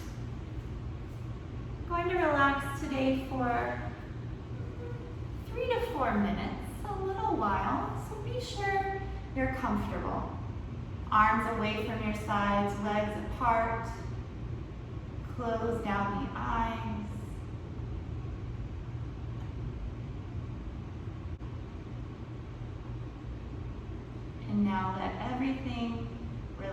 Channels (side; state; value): both; identical; correlation 1.00